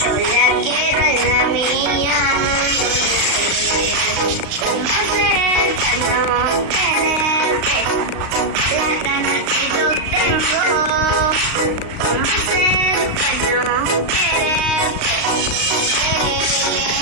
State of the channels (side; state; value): left; late; 35 ms